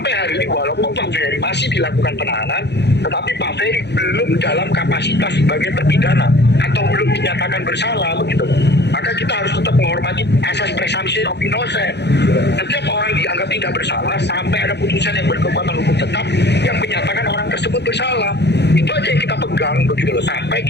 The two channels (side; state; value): right; late; 0.50 ms